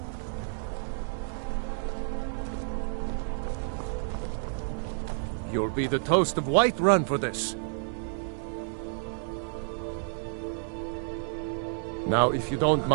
You'll be the toast of Whiterun for this. Now, if you don't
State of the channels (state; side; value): silent; left; digital silence